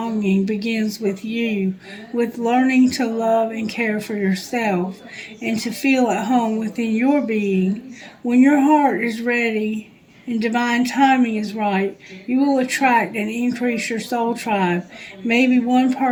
begins with you, with learning to love and care for yourself, and to feel at home within your being. When your heart is ready and divine timing is right, you will attract and increase your soul tribe, maybe one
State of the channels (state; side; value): identical; both; correlation 1.00